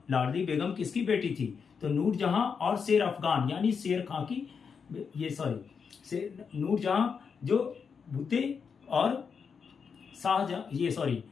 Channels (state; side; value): quieter; right; 6.1 dB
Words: बेगम किसकी बेटी थी, तो नूरजहां और शेर अफगान यानी शेर खां की, नूरजहां जो भूते और